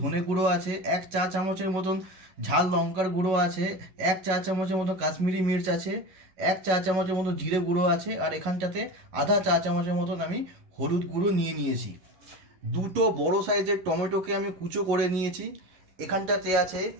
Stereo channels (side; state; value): left; late; 11 ms